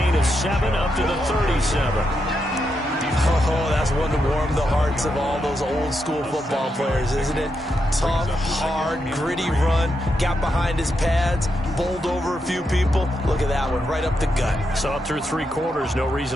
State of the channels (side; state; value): both; normal; correlation 0.83